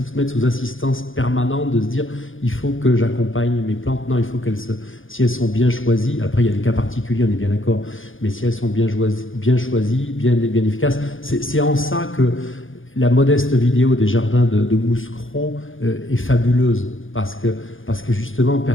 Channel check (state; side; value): late; right; 0.58 ms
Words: mettre sous assistance permanente de se dire il faut que j'accompagne mes plantes. Non, il faut si elles sont bien choisies, après il y a des cas particuliers, on est bien d'accord, mais si elles sont bien choisies, bien efficaces, c'est en ça que la modeste vidéo des jardins de Mouscron est fabuleuse, parce que justement